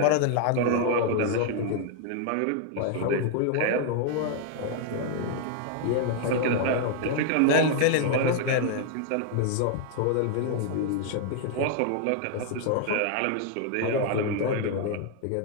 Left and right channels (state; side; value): different; both; correlation 0.00